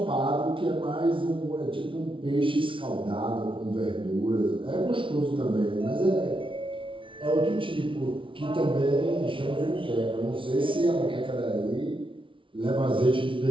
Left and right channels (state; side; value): late; left; 0.25 ms